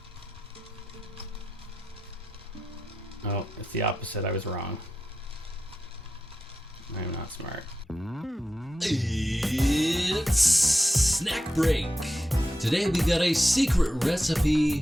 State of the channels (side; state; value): both; normal; correlation 0.89